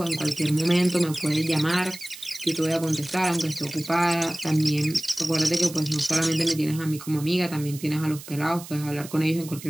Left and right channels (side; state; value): right; noise; hiss, 15 dB below the sound